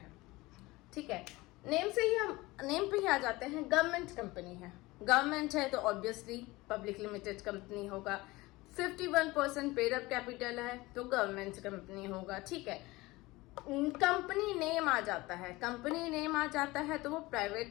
ठीक है, नेम पे ही आ जाते हैं। गवर्नमेंट कंपनी है, गवर्नमेंट है तो ऑब्वियसली पब्लिक लिमिटेड कंपनी होगा। 51% पेड अप कैपिटल है तो गवर्नमेंट कंपनी होगा। ठीक है, कंपनी नेम आ जाता है, कंपनी नेम आ जाता है तो वो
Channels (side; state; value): right; quieter; 20.8 dB